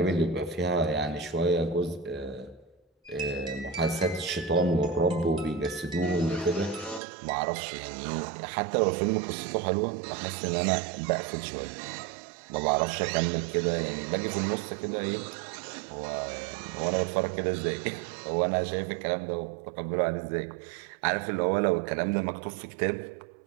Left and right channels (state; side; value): drops out; left; at 7.0 s